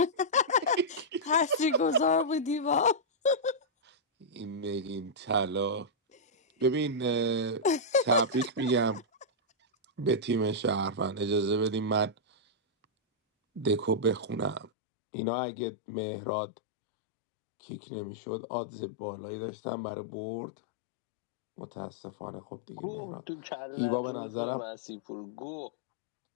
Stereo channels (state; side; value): drops out; right; at 14.7 s